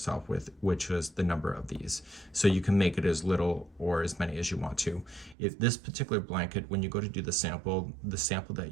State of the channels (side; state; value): left; drops out; at 5.4 s